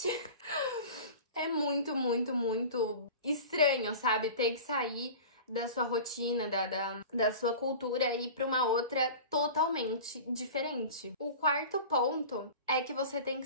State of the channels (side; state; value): both; inverted; correlation -0.36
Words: É muito estranho, sabe? Ter que sair da sua rotina, da sua cultura e ir pra uma outra totalmente diferente. O quarto ponto é que você tem que